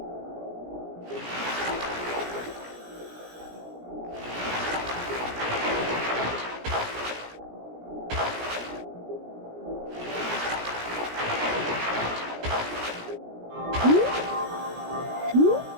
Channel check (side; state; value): left; late; 17 ms